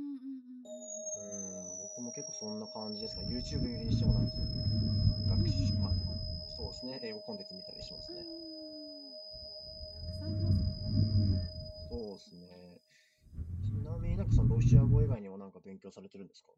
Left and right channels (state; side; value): identical; both; correlation 1.00